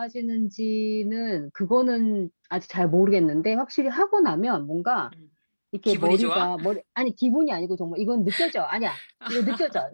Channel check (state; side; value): inverted; both; correlation -1.00